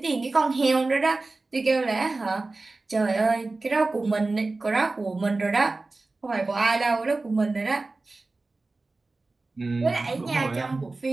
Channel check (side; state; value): left; quieter; 3.4 dB